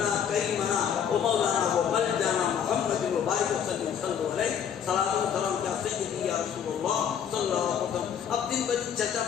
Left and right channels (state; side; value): quieter; right; 8.2 dB